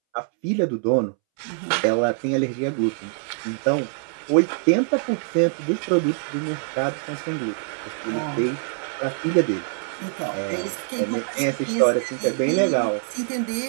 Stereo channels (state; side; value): silent; left; 63 dB below the other